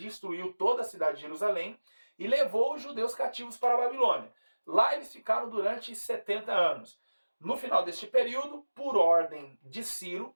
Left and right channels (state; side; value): inverted; both; correlation -1.00